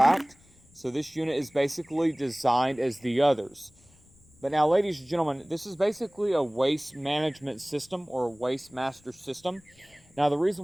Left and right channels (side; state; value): left; noise; rumble, 29 dB below the sound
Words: So this unit is basically designed as the others. But now, ladies and gentlemen, this is basically a waste management system or a waste master system. Now, the reason